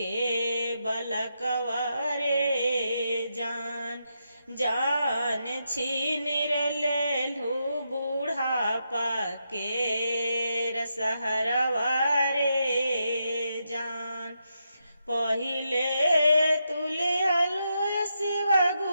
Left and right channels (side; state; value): both; inverted; correlation -0.83